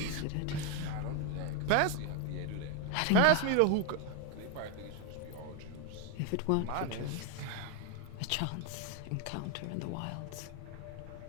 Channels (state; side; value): different; both; correlation 0.01